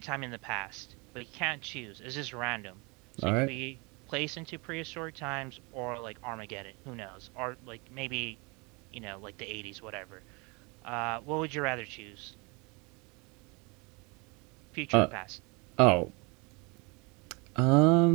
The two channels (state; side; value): quieter; left; 29.2 dB